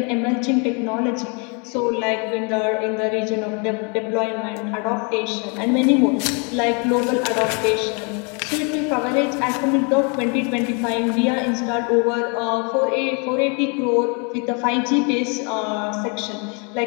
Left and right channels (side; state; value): right; quieter; 34.9 dB